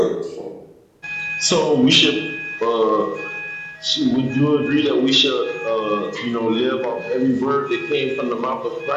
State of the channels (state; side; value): identical; both; correlation 1.00